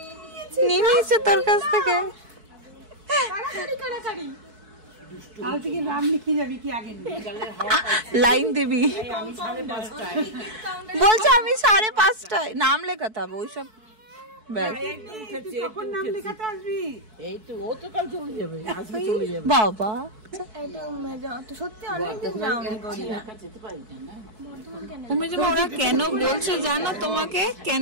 নিয়ে নিয়েছে তোর কাছ থেকে। লাইন দিবি বলছে, আমি 5:30 নাম লেখাতে হবে ওইসব। বাবা তুমি যে ওরা কেন বলছে জানো, তোমাকে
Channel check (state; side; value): late; left; 4.6 ms